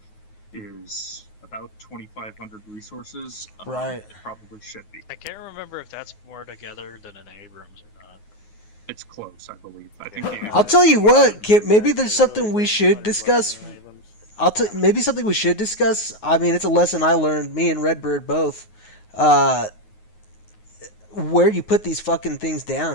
is about 2,500 resources, Right. It probably should be. I can't remember if that's more together than an Abrams or not. It's close, I believe. I think. I'll tell you what, Kip, maybe there's something we should discuss. Maybe something we should discuss. I mean, it's a lesson I learned, me and Redbird both. Where you put these fucking things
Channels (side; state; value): right; late; 9.5 ms